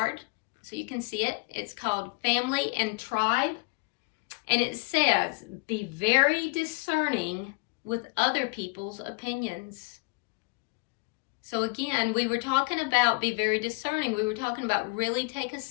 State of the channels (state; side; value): quieter; right; 29.9 dB